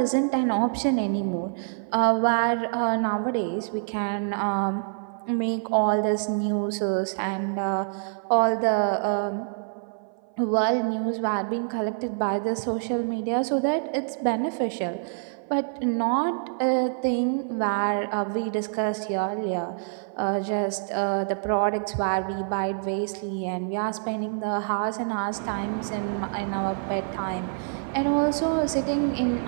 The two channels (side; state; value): left; silent; 57 dB below the other